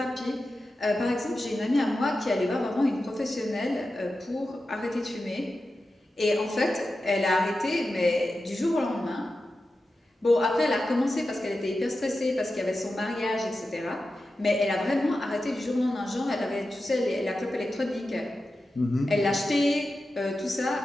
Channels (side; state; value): both; normal; correlation 0.92